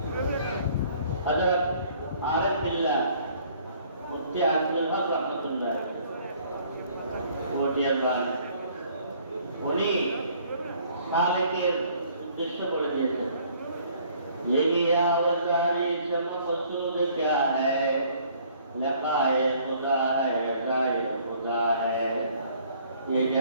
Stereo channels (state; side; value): inverted; both; correlation -0.59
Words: হযরত আরিফ বিল্লাহ মুফতি আজিজুল হক রাহমাতুল্লাহ মটিয়ার বাড়ি, উনি সালেকের উদ্দেশ্য করে দিয়েছেন, यही आवाज़ारी से मकसूद क्या है, लकाए खुदा है, रज़ाए खुदा है, ये